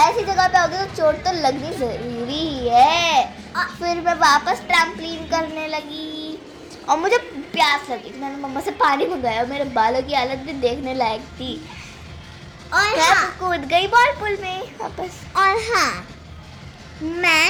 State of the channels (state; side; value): identical; both; correlation 1.00